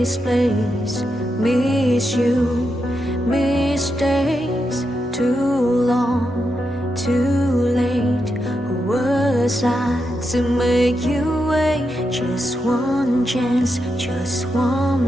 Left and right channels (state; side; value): normal; both; correlation 0.85